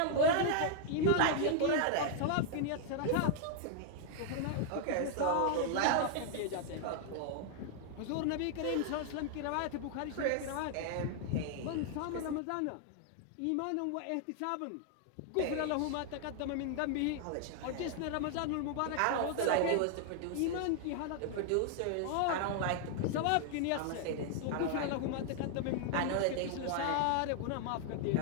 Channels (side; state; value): both; different; correlation 0.00